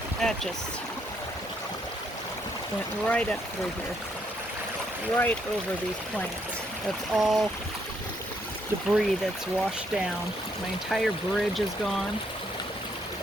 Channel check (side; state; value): both; normal; correlation 0.72